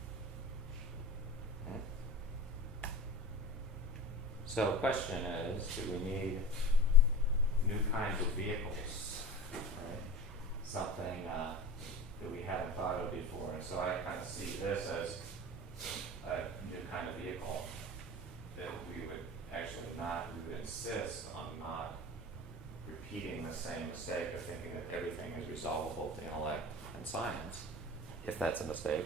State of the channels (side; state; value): both; normal; correlation 0.34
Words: So the question is, do we need new kinds of vehicles, right? Something that we haven't thought of before. And so I kind of see this as a new kind of vehicle that we would insist on not repeating the same mistake of thinking that everything is resolvable to intellect and science. If that's a